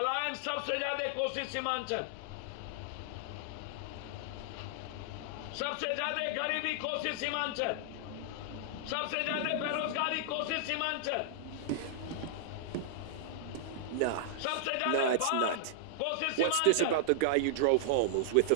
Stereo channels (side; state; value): both; different; correlation -0.01